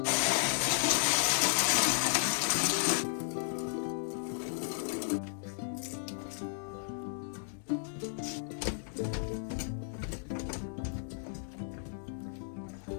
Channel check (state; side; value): silent; right; digital silence